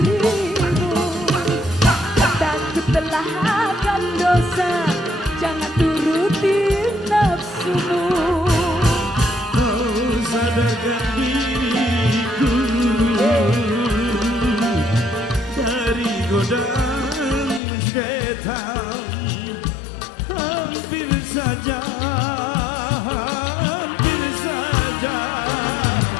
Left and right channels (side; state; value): right; drops out; at 17.6 s